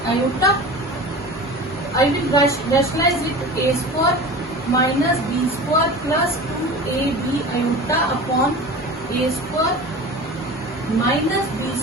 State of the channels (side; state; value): both; normal; correlation 0.34